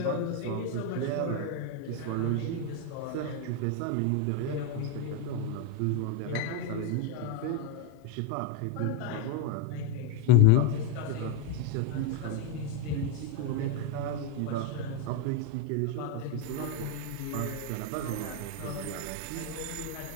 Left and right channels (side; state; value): both; different; correlation 0.02